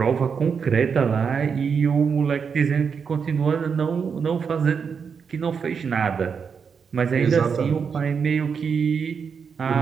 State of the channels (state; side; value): quieter; left; 6.2 dB